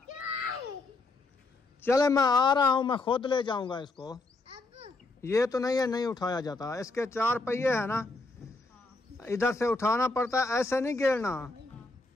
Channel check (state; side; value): quieter; right; 3.3 dB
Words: चले मैं आ रहा हूँ, मैं खुद ले जाऊंगा इसको। ये तो नहीं है, नहीं उठाया जाता। इसके 4 पहिए है ना, इधर से उठाना पड़ता है, ऐसे नहीं गिरना।